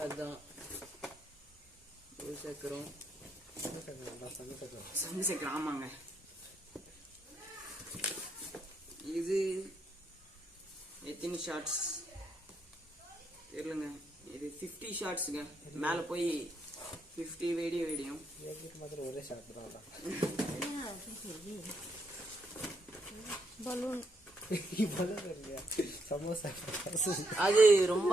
அதுதான் சக்கரம், சக்கரம். ஆமாங்க. இது எத்தனை ஷார்ட்ஸ் தெரியலங்க. இது 50 ஷார்ட்ஸுங்க. மேலே போய் 50 வீடியோ அது ரொம்ப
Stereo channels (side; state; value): both; normal; correlation 0.77